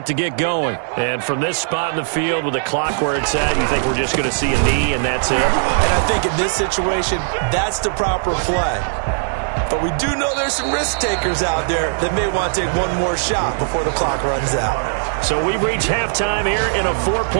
to get going. And from this spot in the field with the clock where it's at, you think we're just going to see a knee and that's it? And I think in this situation, that's the proper play. But we do know there's some risk takers out there that may want to take one more shot before the clock runs out. So we've reached halftime here in a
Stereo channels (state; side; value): silent; left; digital silence